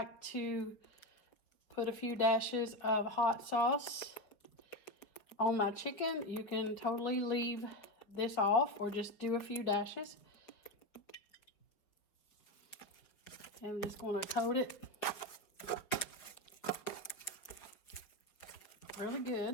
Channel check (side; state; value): right; late; 5.0 ms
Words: to put a few dashes of hot sauce on my chicken. You can totally leave this off or just do a few dashes. And I'm just going to coat it really